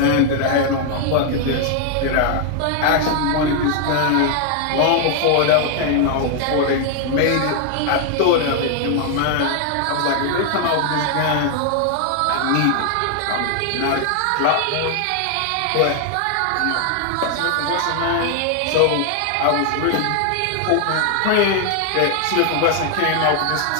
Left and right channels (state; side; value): different; both; correlation 0.00